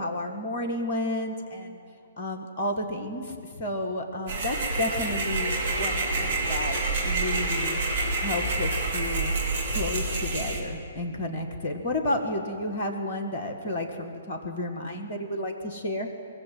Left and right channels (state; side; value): inverted; both; correlation -0.46